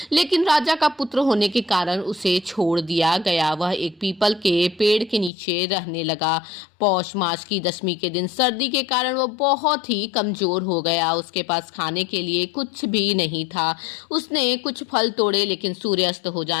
लेकिन राजा का पुत्र होने के कारण उसे छोड़ दिया गया। वह एक पीपल के पेड़ के नीचे रहने लगा। पौष मास की दशमी के दिन सर्दी के कारण वह बहुत ही कमजोर हो गया। उसके पास खाने के लिए कुछ भी नहीं था। उसने कुछ फल तोड़े, लेकिन सूर्यास्त हो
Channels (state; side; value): drops out; right; at 5.3 s